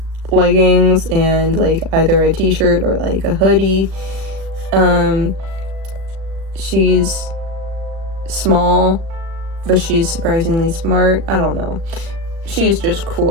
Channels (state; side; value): late; left; 37 ms